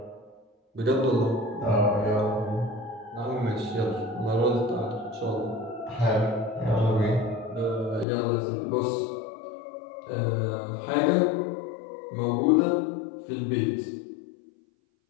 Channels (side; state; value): right; drops out; at 8.1 s